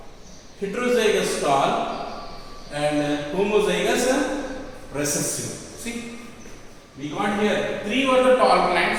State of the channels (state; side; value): identical; both; correlation 1.00